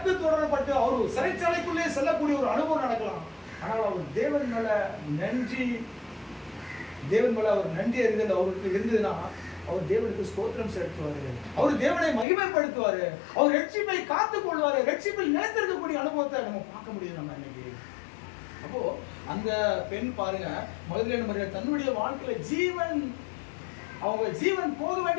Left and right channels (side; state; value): right; drops out; at 12.2 s